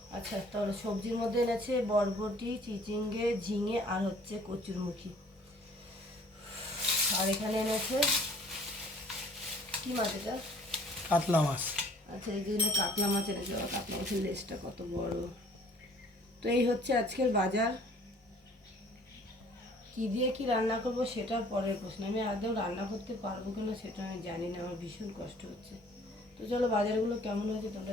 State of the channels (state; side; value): normal; both; correlation 0.55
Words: আচ্ছা, তাহলে সবজির মধ্যে এনেছে বরবটি, চিচিঙ্গে, ঝিঙে আর হচ্ছে কচুরমুখী। আর এখানে এনেছে কি মাছ এটা? কাতলা মাছ। আচ্ছা, এই জন্য কাতলা মাছ এনেছে। কাতলা মাছের লেজটা কত বড়। তো এই হচ্ছে আজকের বাজার। কি দিয়ে কি রান্না করব সেটা পরের প্রশ্ন। আমি আদৌ রান্না করতে পারবো কিনা সেটা আমি জানি না, আমার ভীষণ কষ্ট হচ্ছে। তো চলো বাজারগুলো কেমন হয়েছে